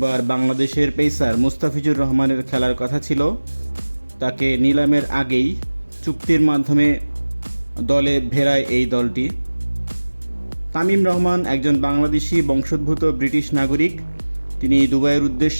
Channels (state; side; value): inverted; both; correlation -1.00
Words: বাংলাদেশের পেসার মুস্তাফিজুর রহমানের খেলার কথা ছিল। তাকে নিলামের আগেই চুক্তির মাধ্যমে দলে ভেড়ায় এই দলটি। তামিম রহমান একজন বাংলাদেশি বংশোদ্ভূত ব্রিটিশ নাগরিক। তিনি দুবাইয়ের